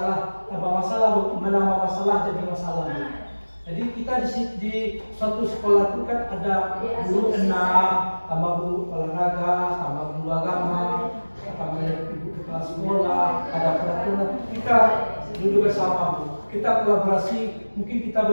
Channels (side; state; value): both; inverted; correlation -1.00